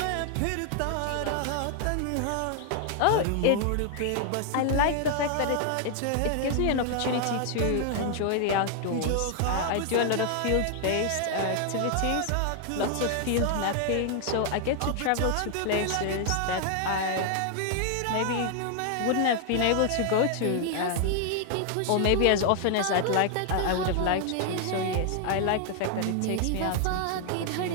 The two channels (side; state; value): both; different; correlation 0.00